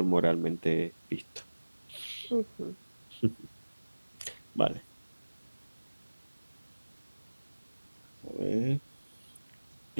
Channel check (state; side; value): inverted; both; correlation -1.00